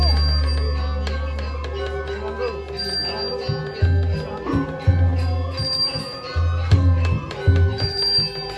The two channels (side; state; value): both; identical; correlation 1.00